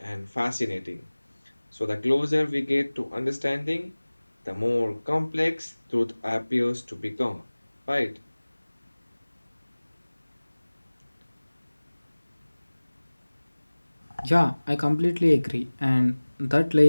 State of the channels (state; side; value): inverted; both; correlation -1.00